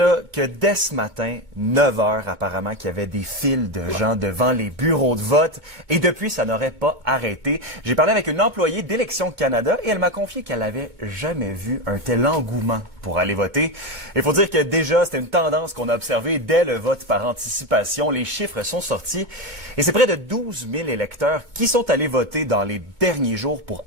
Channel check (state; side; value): late; left; 2.2 ms